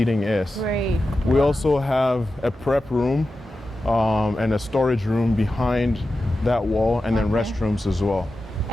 is. Great. We also have a prep room and a storage room behind that wall, and then restrooms as well.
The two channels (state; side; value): normal; both; correlation 0.92